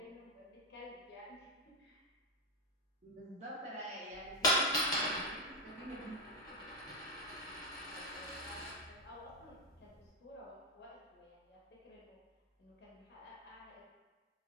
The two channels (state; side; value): normal; both; correlation 0.05